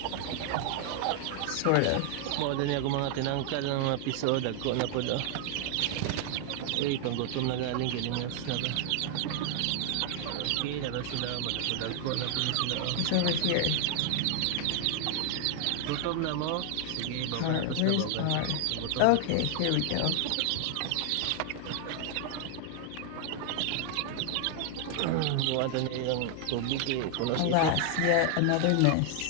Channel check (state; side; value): different; both; correlation 0.00